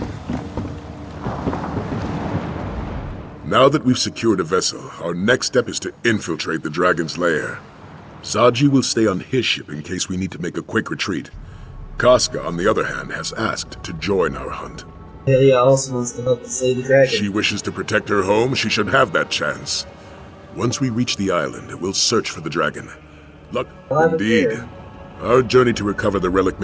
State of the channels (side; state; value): both; identical; correlation 1.00